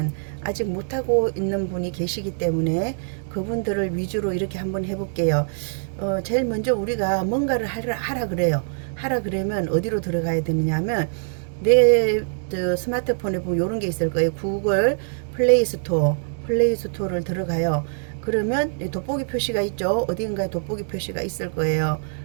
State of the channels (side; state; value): left; silent; digital silence